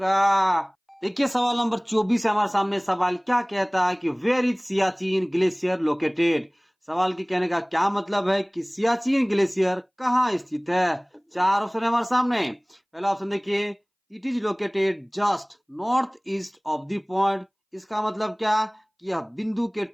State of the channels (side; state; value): both; identical; correlation 1.00